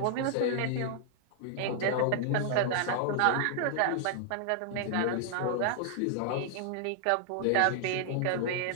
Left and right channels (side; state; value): both; different; correlation 0.00